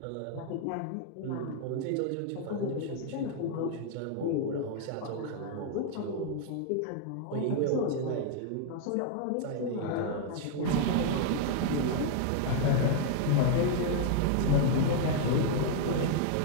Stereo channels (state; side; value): different; both; correlation 0.00